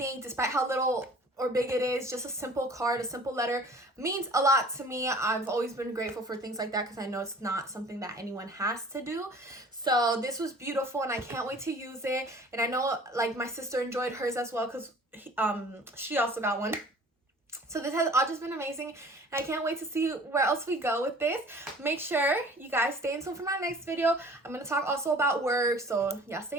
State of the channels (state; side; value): normal; both; correlation 0.48